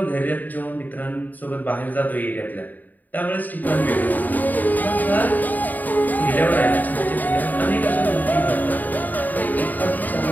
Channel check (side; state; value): right; late; 0.084 ms